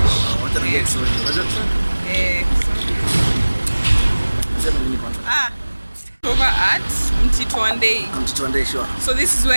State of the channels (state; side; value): inverted; both; correlation -1.00